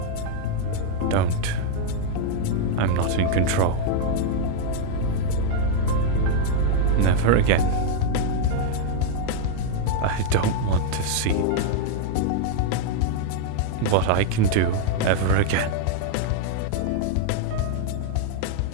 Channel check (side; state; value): both; different; correlation 0.00